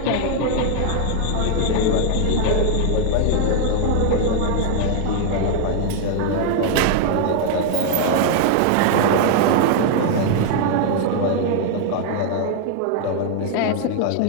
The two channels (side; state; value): both; different; correlation 0.00